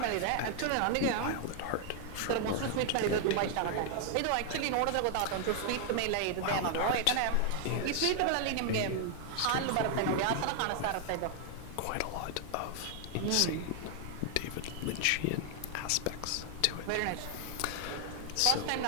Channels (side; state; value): both; different; correlation 0.00